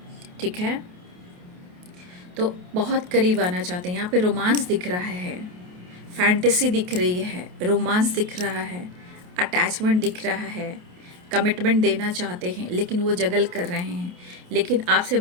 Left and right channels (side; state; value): left; late; 28 ms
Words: ठीक है, तो बहुत करीब आना चाहते हैं। यहाँ पे रोमांस दिख रहा है, फैंटेसी दिख रही है, रोमांस दिख रहा है, अटैचमेंट दिख रहा है, कमिटमेंट देना चाहते हैं, लेकिन वो जगल कर रहे हैं, लेकिन आपसे